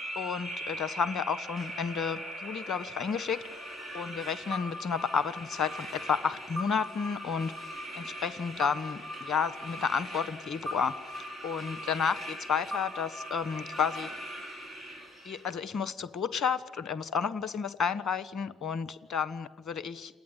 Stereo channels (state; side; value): quieter; right; 5.1 dB